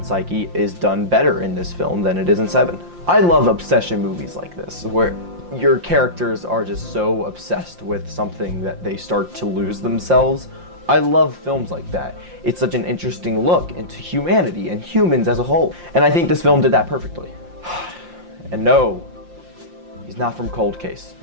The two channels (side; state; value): left; late; 5.7 ms